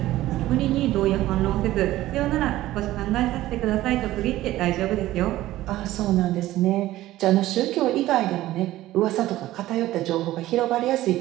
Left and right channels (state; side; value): quieter; left; 15.5 dB